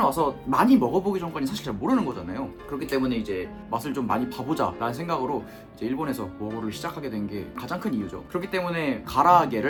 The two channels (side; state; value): both; identical; correlation 1.00